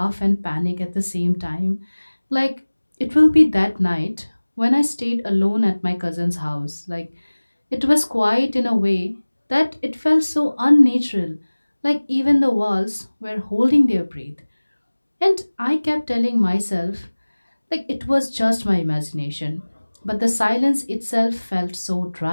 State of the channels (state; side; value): inverted; both; correlation -1.00